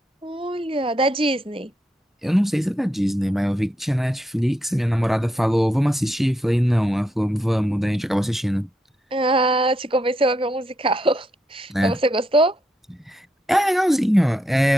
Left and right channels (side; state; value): both; normal; correlation 0.81